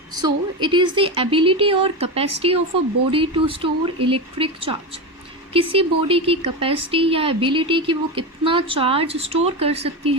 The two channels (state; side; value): normal; both; correlation 0.18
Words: So it is the ability or capacity of a body to store electric charge. किसी body की capacity या ability कि वो कितना charge store कर सकती